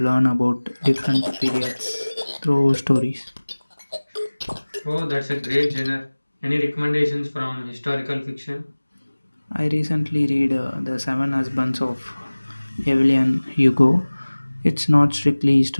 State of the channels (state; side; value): inverted; both; correlation -1.00